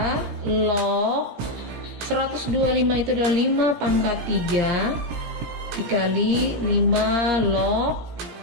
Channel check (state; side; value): late; left; 17 ms